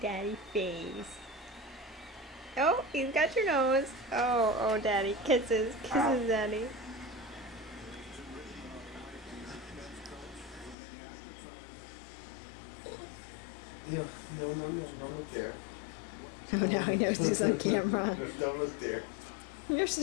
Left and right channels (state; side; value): drops out; right; at 10.8 s